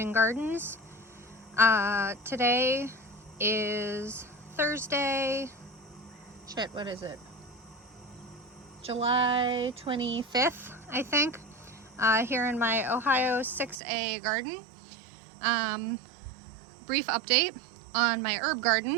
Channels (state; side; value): drops out; left; at 13.8 s